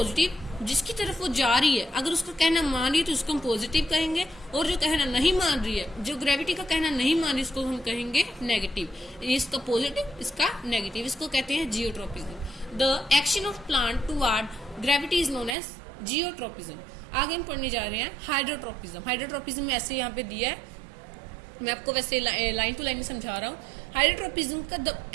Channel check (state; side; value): drops out; left; at 15.6 s